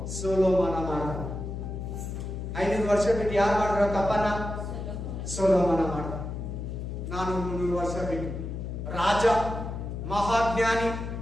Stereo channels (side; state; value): left; noise; hum, 6 dB below the sound